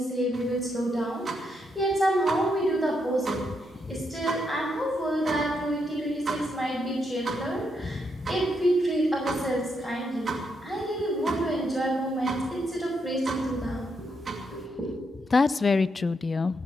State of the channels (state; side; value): normal; both; correlation 0.79